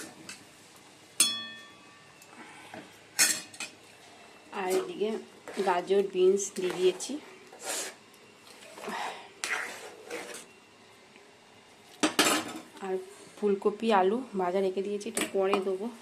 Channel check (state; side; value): identical; both; correlation 1.00